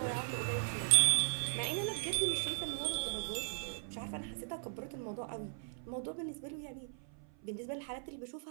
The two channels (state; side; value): silent; left; 53 dB below the other